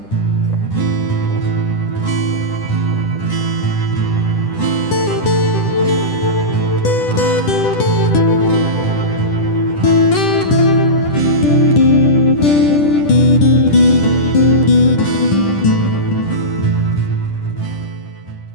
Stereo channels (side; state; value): right; late; 10 ms